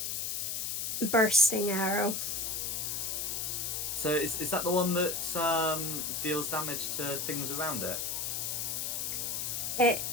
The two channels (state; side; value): noise; left; hiss, 1 dB below the sound